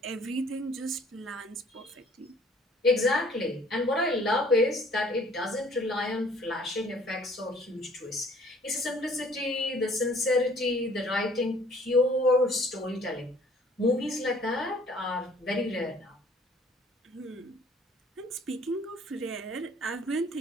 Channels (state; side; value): normal; both; correlation 0.56